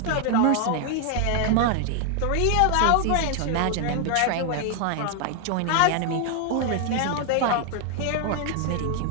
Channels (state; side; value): different; both; correlation 0.00